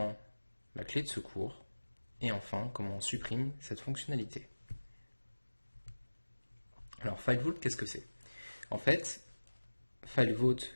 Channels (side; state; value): both; inverted; correlation -1.00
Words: la clé de secours et enfin comment on supprime cette fonctionnalité. Alors FileVault, qu'est-ce que c'est? En fait, FileVault